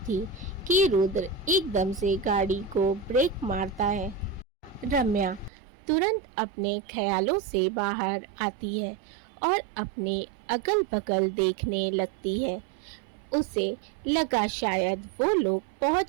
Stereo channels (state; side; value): drops out; left; at 5.5 s